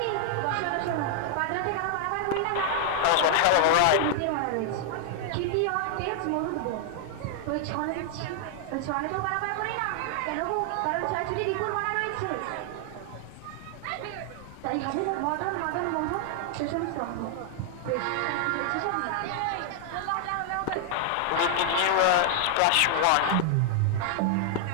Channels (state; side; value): different; both; correlation 0.00